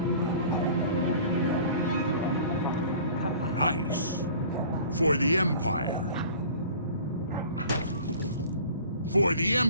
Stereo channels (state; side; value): inverted; both; correlation -0.46